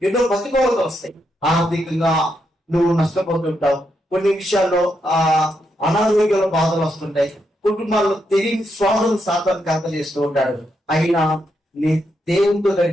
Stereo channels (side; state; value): both; normal; correlation 0.81